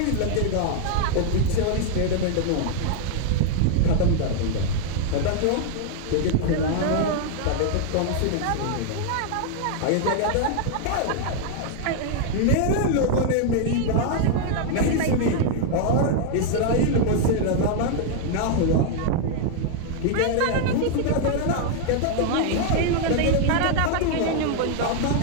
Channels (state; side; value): different; both; correlation 0.00